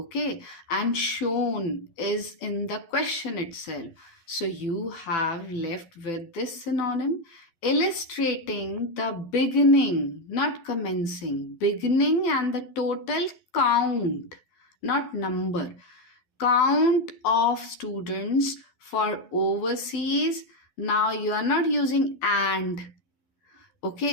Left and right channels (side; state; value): right; late; 11 ms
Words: and shown is in the question itself. So you have left with this synonym, illustrating the beginning, not commencing, beginning and the total count, not number, count of students for overseas. Now you are not using and,